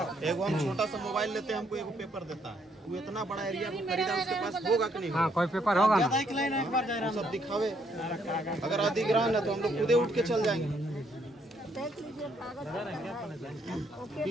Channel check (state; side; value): normal; both; correlation 0.71